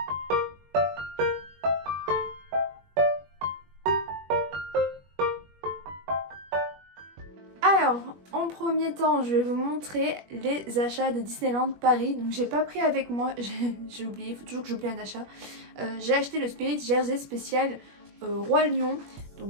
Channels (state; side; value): late; left; 21 ms